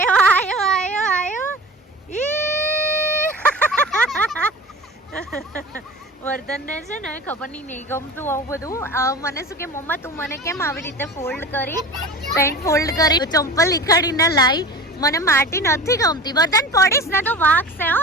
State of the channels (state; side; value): normal; both; correlation 0.35